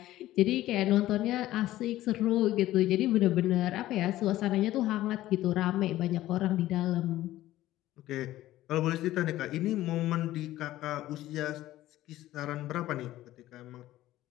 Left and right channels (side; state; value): right; quieter; 15.1 dB